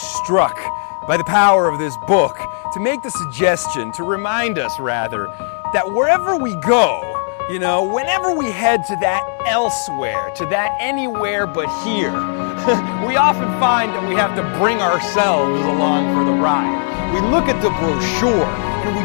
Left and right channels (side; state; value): right; silent; digital silence